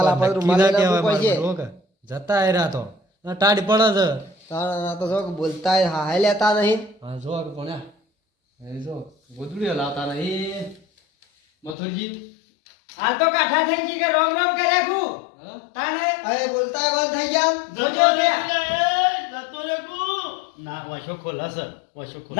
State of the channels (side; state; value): right; drops out; at 11.8 s